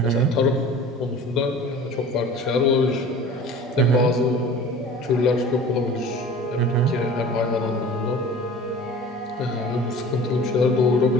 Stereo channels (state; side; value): normal; both; correlation 0.41